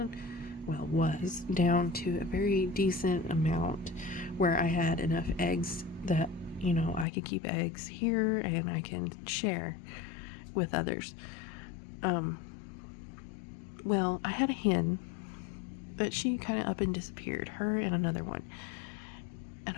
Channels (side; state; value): right; drops out; at 7.1 s